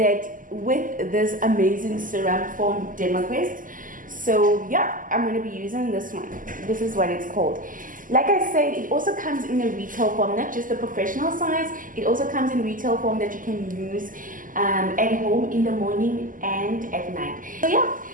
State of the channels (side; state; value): left; late; 0.39 ms